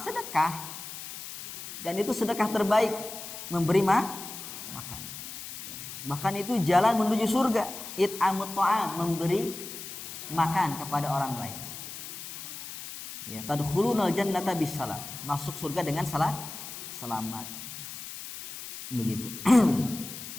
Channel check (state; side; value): noise; left; hiss, 10 dB below the sound